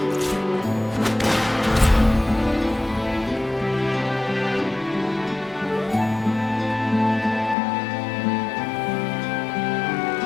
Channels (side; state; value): right; drops out; at 7.6 s